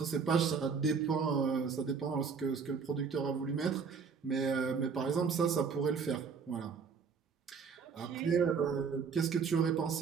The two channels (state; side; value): quieter; left; 5.8 dB